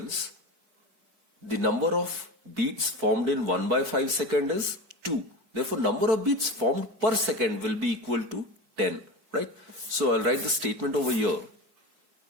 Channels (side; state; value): left; late; 4.5 ms